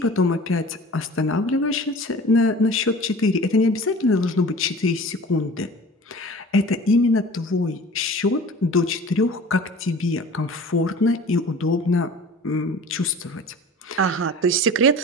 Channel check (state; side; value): normal; both; correlation 0.42